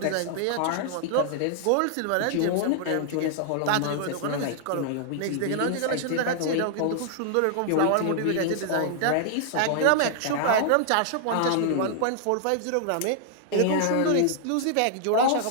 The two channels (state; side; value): different; both; correlation -0.01